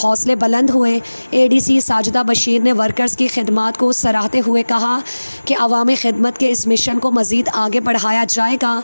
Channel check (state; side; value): inverted; both; correlation -1.00